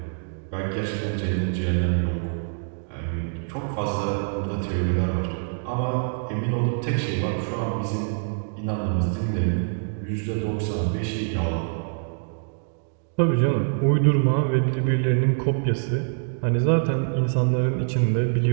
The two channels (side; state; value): left; silent; digital silence